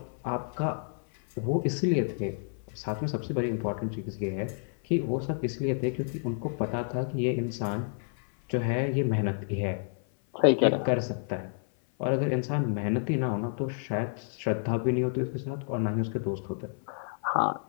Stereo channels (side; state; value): right; silent; 57 dB below the other